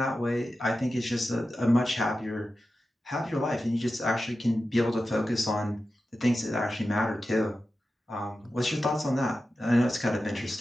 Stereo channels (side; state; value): both; normal; correlation 0.92